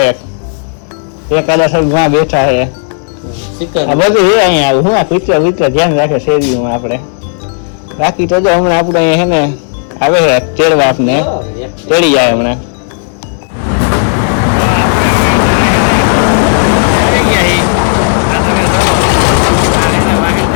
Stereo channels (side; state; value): right; silent; 68 dB below the other